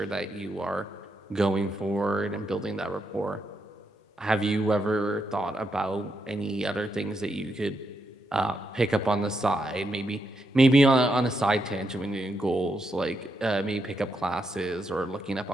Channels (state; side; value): normal; both; correlation 0.81